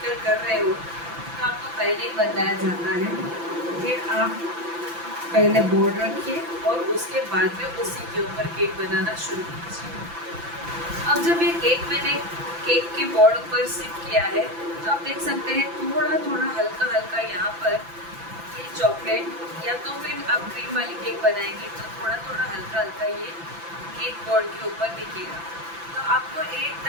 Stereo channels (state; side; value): late; left; 5.9 ms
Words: कर रहे हो तो आपको पहले ही बताया जाता है कि आप पहले बोर्ड रखिए और उसके बाद में उसी के ऊपर केक बनाना शुरू कीजिए। अब जब ये केक मैंने केक के बोर्ड पर शिफ्ट किया है तो आप देख सकते हैं थोड़ा थोड़ा हल्का हल्का यहाँ पर ये चॉकलेट, या तो फिर आप क्रीम वाली केक बनाएंगे तो थोड़ा थोड़ा हल्का हल्का ये केक बोर्ड के ऊपर दिखेगा। तो आपको